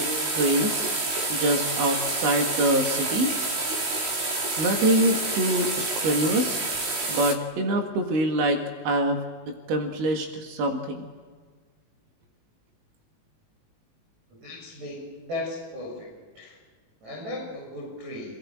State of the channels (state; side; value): late; left; 19 ms